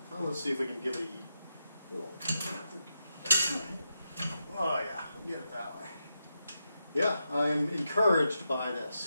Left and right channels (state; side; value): inverted; both; correlation -0.85